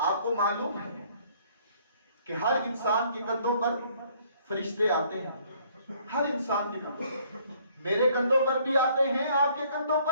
کو معلوم ہے کہ ہر انسان کے کندھوں پر فرشتے آتے ہیں. ہر انسان کے کندھوں پر, میرے کندھوں پر بھی آتے ہیں, آپ کے کندھوں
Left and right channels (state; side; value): inverted; both; correlation -0.62